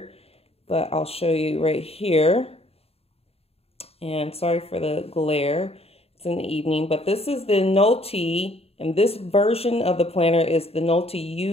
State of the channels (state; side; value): late; right; 0.29 ms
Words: but I'll show you right here. And sorry for the glare. It's in the evening, but this is the Nolty, and this version of the planner is the Nolty